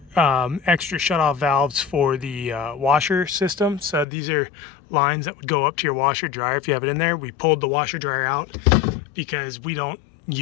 extra shutoff valves for the washer system. So these are lines that would go up to your washer dryer if you have it in there. We pulled the washer dryer out because we don't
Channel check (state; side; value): drops out; right; at 4.0 s